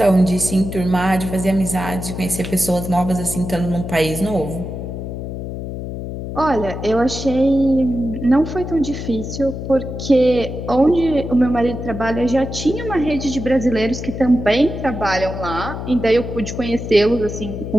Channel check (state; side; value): noise; left; hum, 7 dB below the sound